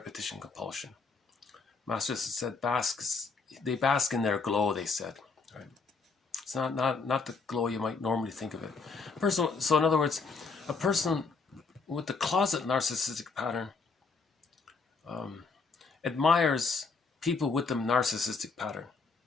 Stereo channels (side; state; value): right; quieter; 4.5 dB